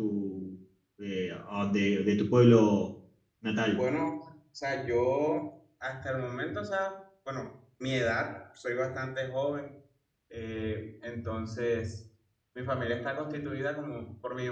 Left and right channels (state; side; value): identical; both; correlation 1.00